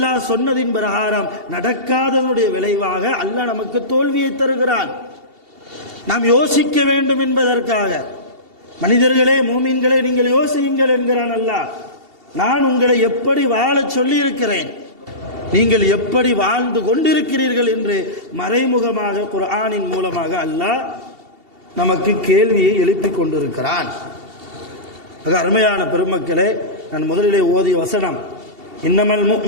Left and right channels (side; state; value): left; late; 2.7 ms